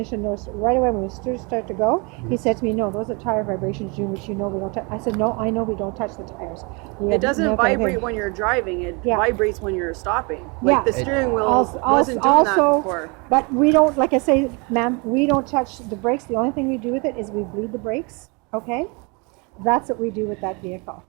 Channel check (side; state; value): left; quieter; 30.5 dB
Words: noticed right away when we start to go. He said to me, "No, those are tire vibrations, June, which you know we don't touch." I said, "No, I know we don't touch the tires." It doesn't vibrate when you're driving. It vibrates when you're stopping. Like the steering wheel wasn't doing that before. But we don't, like I say, ma'am, we don't touch the brakes. The only thing we do with it is we bleed the brakes. Okay. That's what we do with that vehicle,